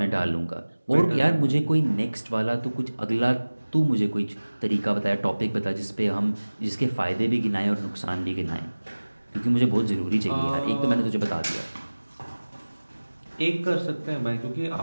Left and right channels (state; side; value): inverted; both; correlation -1.00